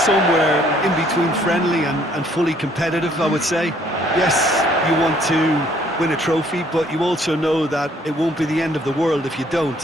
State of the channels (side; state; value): both; normal; correlation 0.62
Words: in between friendly and fully competitive, I would say. Yes, you want to win a trophy, but you also know that it won't be the end of the world if you